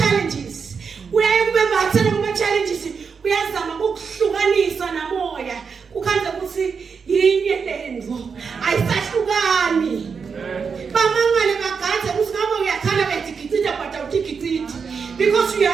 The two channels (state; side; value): quieter; left; 5.8 dB